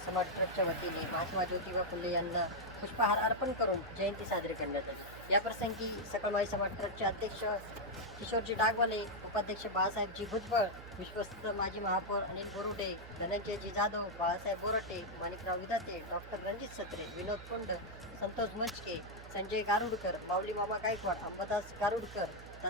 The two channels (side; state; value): right; noise; hum, 15 dB below the sound